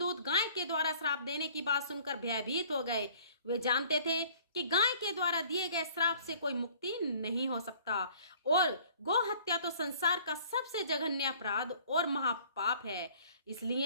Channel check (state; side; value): inverted; both; correlation -0.53